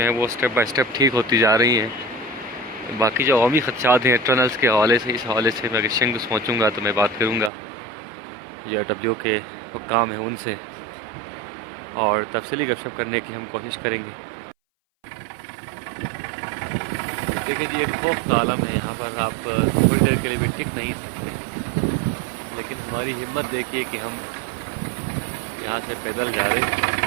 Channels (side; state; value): left; drops out; at 7.5 s